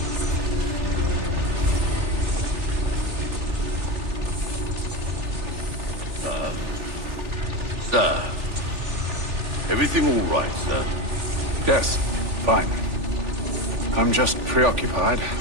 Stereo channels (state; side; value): late; left; 3.4 ms